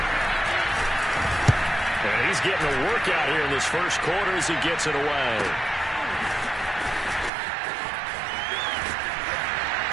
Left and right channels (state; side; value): drops out; left; at 7.3 s